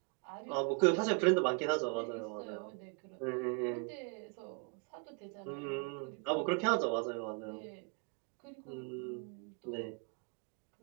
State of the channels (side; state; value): left; quieter; 35.8 dB